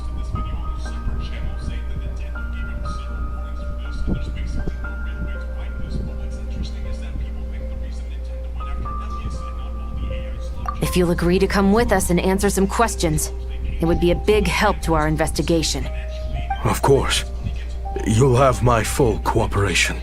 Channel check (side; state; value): both; identical; correlation 1.00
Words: If you'll agree to come with us and answer some questions, it would be a big help to our investigation. Of course. You'll have my full cooperation.